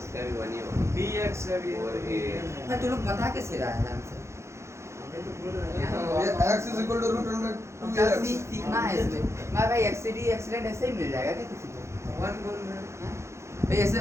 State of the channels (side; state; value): left; late; 0.13 ms